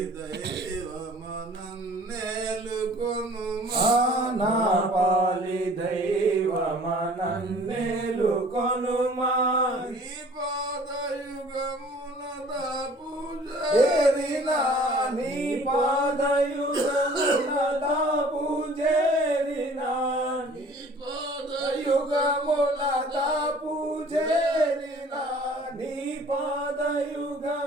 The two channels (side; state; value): both; normal; correlation 0.51